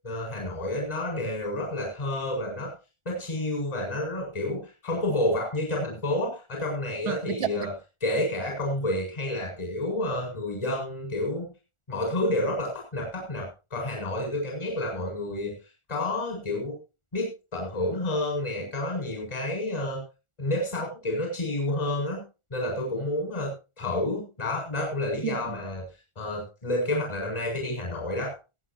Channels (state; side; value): late; right; 1.4 ms